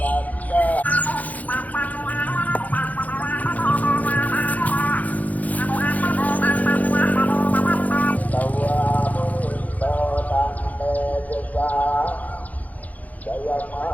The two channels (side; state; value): right; late; 0.076 ms